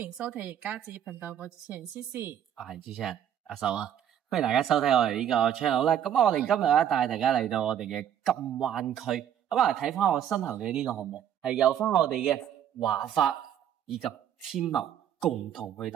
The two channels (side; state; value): left; quieter; 9.9 dB